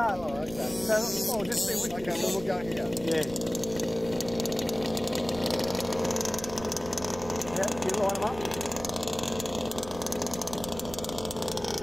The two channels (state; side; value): noise; right; rumble, 14 dB below the sound